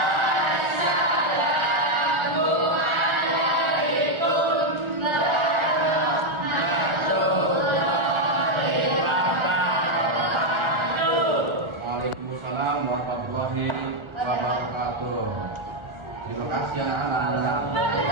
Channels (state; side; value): late; left; 1.4 ms